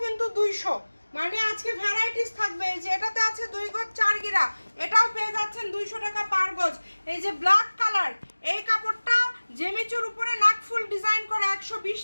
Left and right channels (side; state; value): both; inverted; correlation -1.00